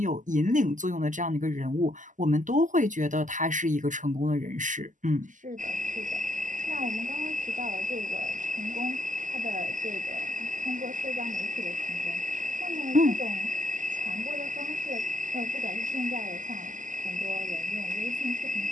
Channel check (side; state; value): left; late; 0.37 ms